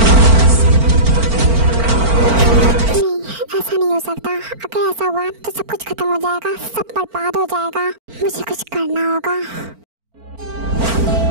ऐसा नहीं हो सकता। अगर ऐसा हुआ तो सब कुछ खत्म हो जाएगा, सब बर्बाद हो जाएगा। मुझे कुछ करना होगा।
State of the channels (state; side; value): late; left; 4.4 ms